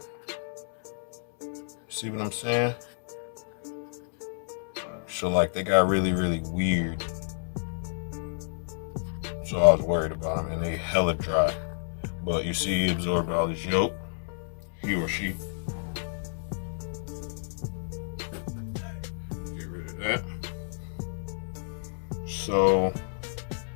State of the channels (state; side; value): silent; right; 58 dB below the other